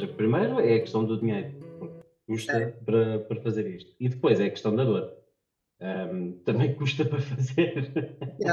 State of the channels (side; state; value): both; identical; correlation 1.00